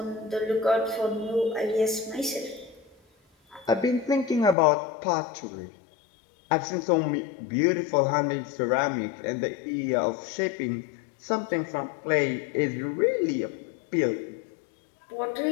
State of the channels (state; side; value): drops out; right; at 4.5 s